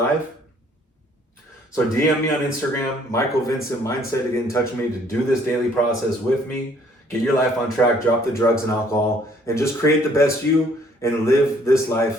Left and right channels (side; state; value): both; normal; correlation 0.61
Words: So DM me on Instagram, MichaelVincentMindset, to get in touch with me to do this daily process with me. Get your life on track, drop the drugs and alcohol, and just create the best you and live this